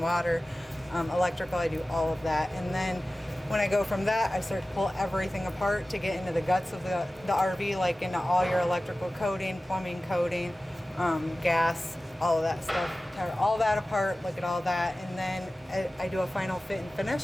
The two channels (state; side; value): normal; both; correlation 0.96